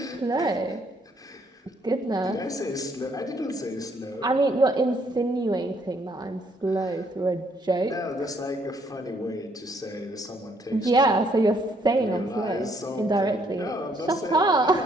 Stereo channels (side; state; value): both; normal; correlation 0.68